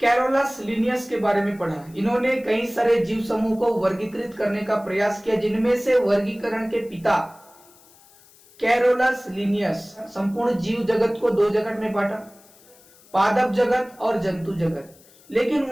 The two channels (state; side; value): noise; left; hiss, 27 dB below the sound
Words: कैरोलस लिनियस के बारे में पढ़ा। इन्होंने कई सारे जीव समूह को वर्गीकृत करने का प्रयास किया, जिनमें से वर्गीकरण के पिता कैरोलस लिनियस संपूर्ण जीव जगत को 2 जगत में बांटा, पादप जगत और जंतु जगत। लेकिन